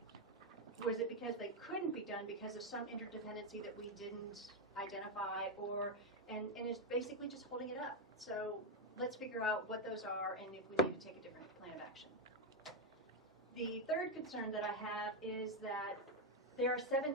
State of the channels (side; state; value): both; normal; correlation 0.05